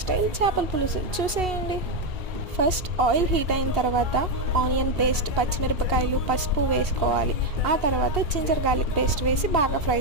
చేపల పులుసు చూసేయండి. ఫస్ట్ ఆయిల్ హీట్ అయిన తర్వాత ఆనియన్ పేస్ట్, పచ్చిమిరపకాయలు, పసుపు వేసుకోవాలి. ఆ తర్వాత జింజర్ గార్లిక్ పేస్ట్ వేసి బాగా ఫ్రై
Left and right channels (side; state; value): left; late; 2.8 ms